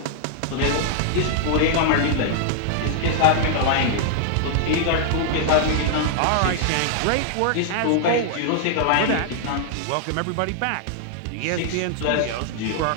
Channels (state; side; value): different; both; correlation 0.00